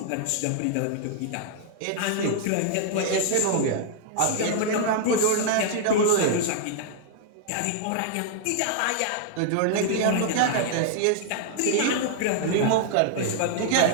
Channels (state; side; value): different; both; correlation 0.00